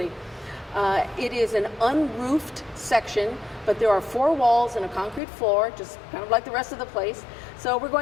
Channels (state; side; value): drops out; right; at 5.2 s